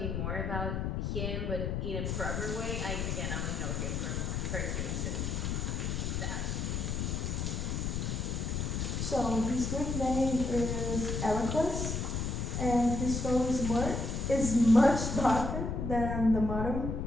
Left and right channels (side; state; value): left; noise; rumble, 1 dB below the sound